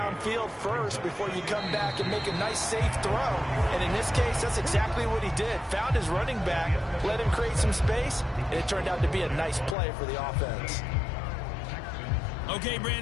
first before you come back and make a nice, safe throw. And in this case, that's exactly what he did. Found his running back, let him create some space, and it turned out to be a nice play for the offense. Okay,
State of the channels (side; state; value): right; drops out; at 9.8 s